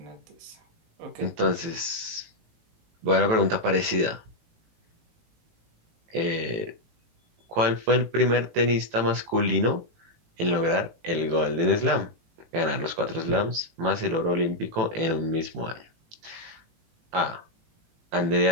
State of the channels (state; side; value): late; left; 18 ms